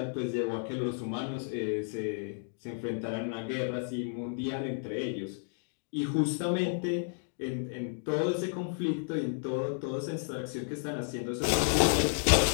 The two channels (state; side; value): silent; right; digital silence